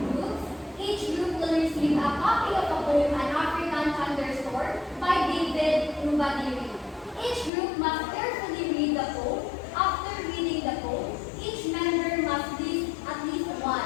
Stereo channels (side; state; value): right; drops out; at 7.5 s